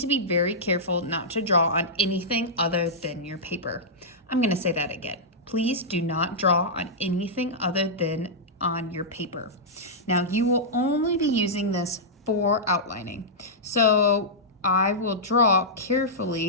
be very careful not to draw on anything other than your paper. I'm gonna say that again. Please do not draw on anything other than on your paper. Now you will only be using this for outlining. So I will draw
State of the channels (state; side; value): normal; both; correlation -0.11